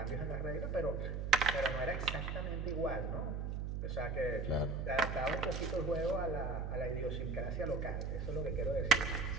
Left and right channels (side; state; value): right; noise; hum, 2 dB below the sound